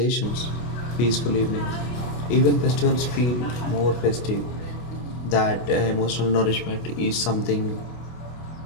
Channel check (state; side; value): late; right; 25 ms